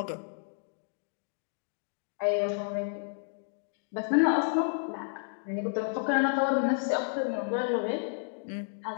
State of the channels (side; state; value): right; silent; digital silence